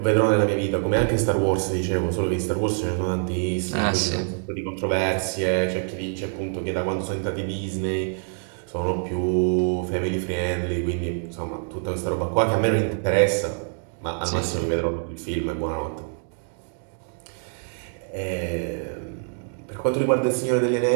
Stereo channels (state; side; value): silent; left; 62 dB below the other